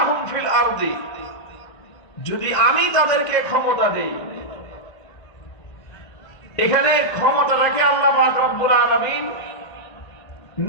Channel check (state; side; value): late; right; 2.0 ms